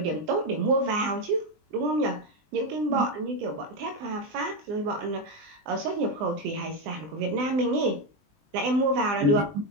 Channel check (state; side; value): late; left; 20 ms